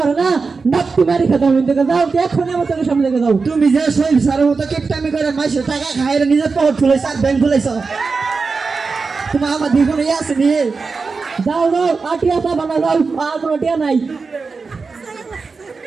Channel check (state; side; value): quieter; left; 4.5 dB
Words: না নাপ্তি মারি খেতে আমি দেখে যাও এখনই আমার চোখের সামনে দেখে যাও তুমি যে শৈল সারের মতো কেপটামি করে মাসে টাকা খাইরে নিজের পকেট খুলেছ আর ব্যাংক খুলেছ তোমার আমার দ্বিগুণ আছে নিয়ে যাও আর টিয়া পাবা না যাও আর কোনো টিয়া নাই